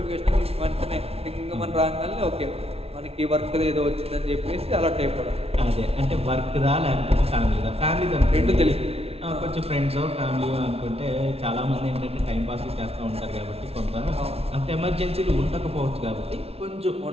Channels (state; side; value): late; left; 0.29 ms